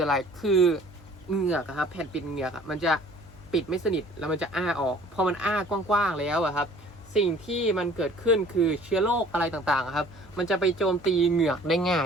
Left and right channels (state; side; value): normal; both; correlation 0.52